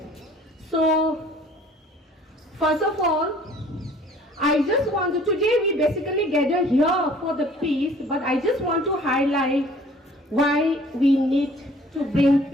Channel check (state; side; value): normal; both; correlation 0.53